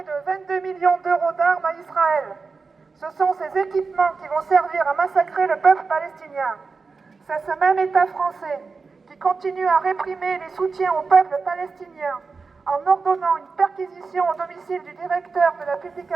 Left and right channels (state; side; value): quieter; left; 4.5 dB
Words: de 22 millions d'euros d'armes à Israël. Ce sont ces équipements qui vont servir à massacrer le peuple palestinien. C'est ce même État français qui continue à réprimer les soutiens au peuple palestinien en ordonnant une perquisition au domicile du directeur de la